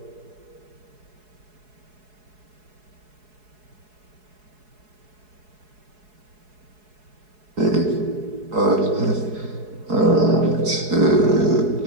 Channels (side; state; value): left; late; 4.7 ms